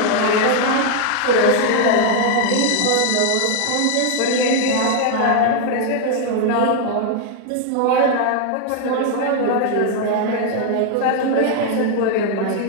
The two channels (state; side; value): different; both; correlation 0.00